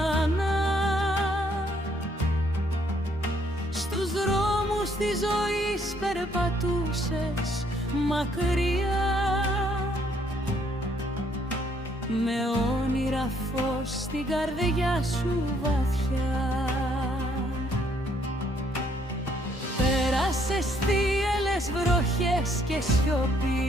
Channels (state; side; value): normal; both; correlation 0.68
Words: Στους δρόμους της ζωής περπατούσες μακριά, με όνειρα φως στην καρδιά σου βαθιά. Πέρασες θύελλες βροχές και